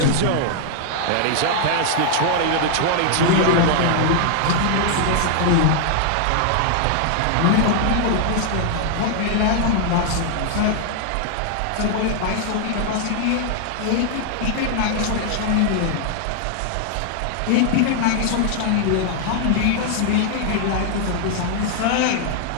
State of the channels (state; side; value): different; both; correlation 0.00